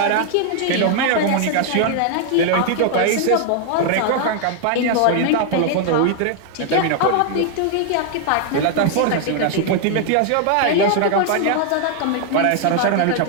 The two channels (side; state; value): both; different; correlation 0.00